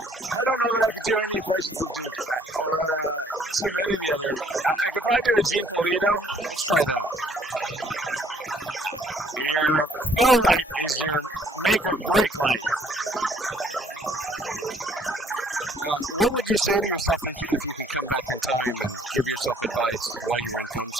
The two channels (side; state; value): both; normal; correlation 0.62